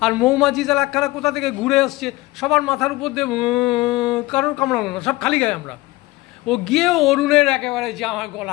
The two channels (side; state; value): right; quieter; 20.1 dB